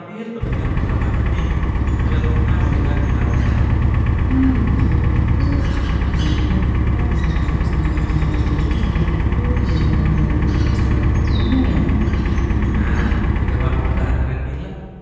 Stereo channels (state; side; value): identical; both; correlation 1.00